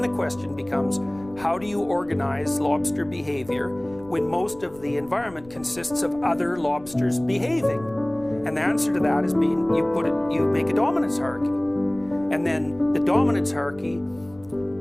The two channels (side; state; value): left; noise; rumble, 22 dB below the sound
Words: the question becomes, how do you organize lobster behavior when most of the environment consists of other lobsters behaving? And the answer to that is you make a dominance hierarchy. And then the dominance hierarchy,